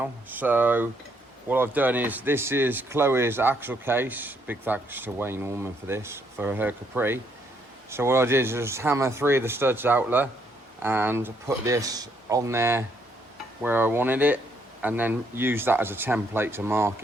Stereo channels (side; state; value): both; normal; correlation 0.71